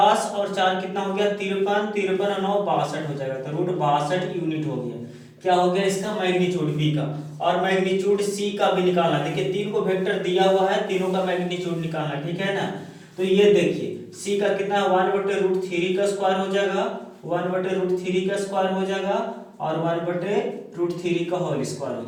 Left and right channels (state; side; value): identical; both; correlation 1.00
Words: और 4 कितना हो गया? 53, 53 और 9 62 हो जाएगा। तो √62 यूनिट हो गया। क्या हो गया इसका? मैग्नीट्यूड बी का। और मैग्नीट्यूड सी का भी निकालना। देखिए 3 को वेक्टर दिया हुआ है, तीनों का मैग्नीट्यूड निकालना, ठीक है ना? तो ये देखिए सी का कितना? 1/√3 का स्क्वायर हो जाएगा, 1/√3 का स्क्वायर हो जाएगा और 1/√3 का होल स्क्वायर हो